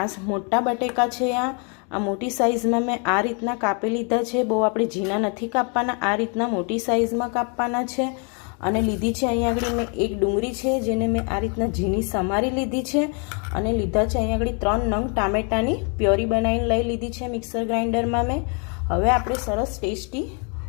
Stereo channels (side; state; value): right; quieter; 37.3 dB